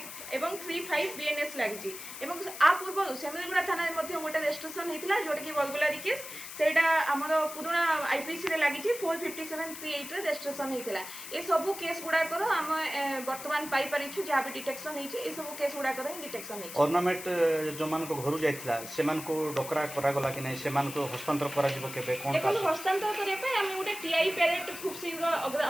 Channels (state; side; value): noise; left; hiss, 11 dB below the sound